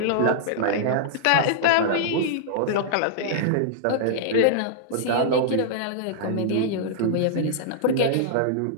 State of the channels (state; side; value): different; both; correlation -0.02